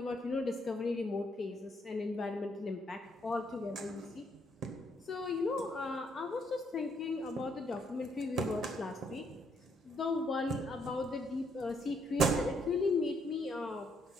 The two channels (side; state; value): both; normal; correlation 0.72